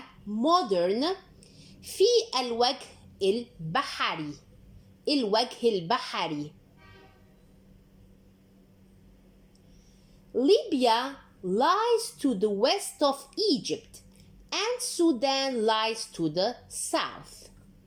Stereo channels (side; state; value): both; identical; correlation 1.00